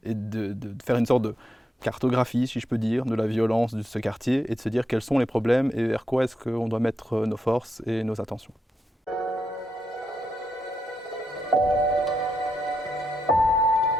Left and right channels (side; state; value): both; normal; correlation 0.83